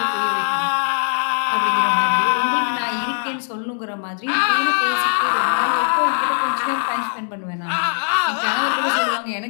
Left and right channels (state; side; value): silent; right; 66 dB below the other